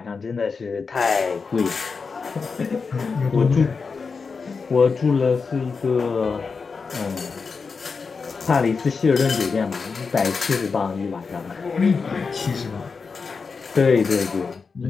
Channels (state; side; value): quieter; right; 5.0 dB